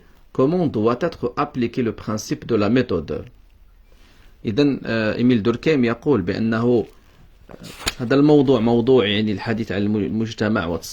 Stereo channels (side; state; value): both; identical; correlation 1.00